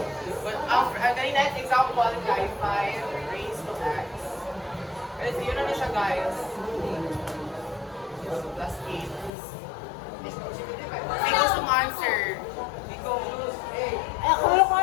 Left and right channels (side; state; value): right; drops out; at 9.3 s